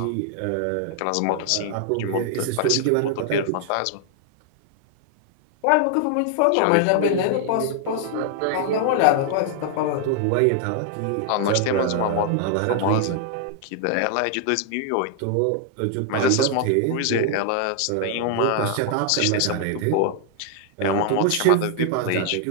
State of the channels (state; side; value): different; both; correlation 0.00